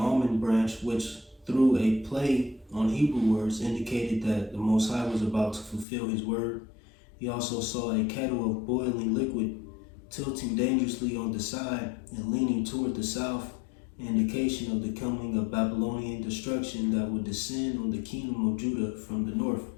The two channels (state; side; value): drops out; right; at 5.9 s